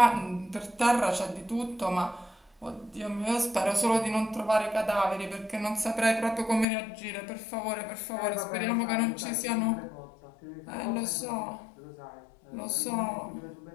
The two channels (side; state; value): right; drops out; at 6.7 s